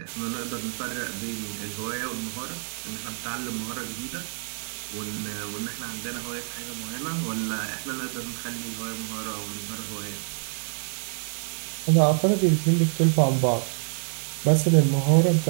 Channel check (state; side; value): silent; left; 58 dB below the other